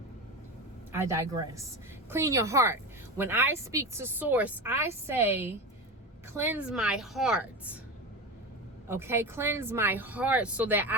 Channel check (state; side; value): normal; both; correlation 0.23